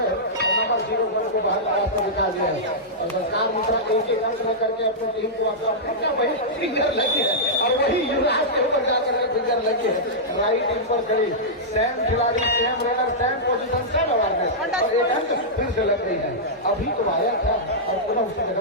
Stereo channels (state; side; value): normal; both; correlation -0.11